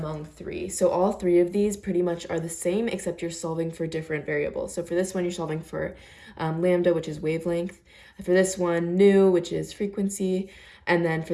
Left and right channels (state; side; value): identical; both; correlation 1.00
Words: three. So all three of these pretty much are the same, except you're solving for different variables. So for this one, you're solving for lambda, which is wavelength. For this one, nu, which is frequency. And then